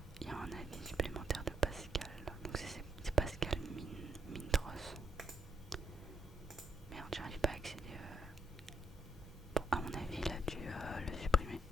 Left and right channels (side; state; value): both; normal; correlation 0.73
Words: il y a un avis supplémentaire de Pascal, donc c'est Pascal Mintros. Merde, j'arrive pas à accéder. Bon, à mon avis, il a dû le supprimer.